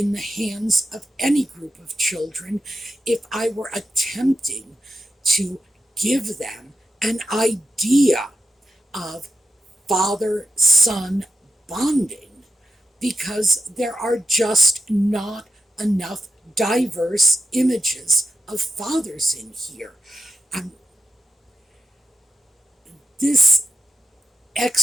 the hands of any group of children if I were attempting to give them an idea of father-son bonding because there are just not enough diverse images of fathers in here. Um, this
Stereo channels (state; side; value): normal; both; correlation 0.87